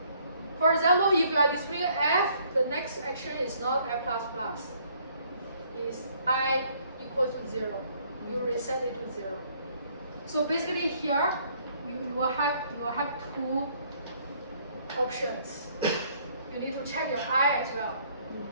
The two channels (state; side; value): inverted; both; correlation -0.64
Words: For example, if you are displaying F, the next action is not F++. It's I equal to 0. You reset it to 0. So basically here, you will have two options. You need to check your I as well.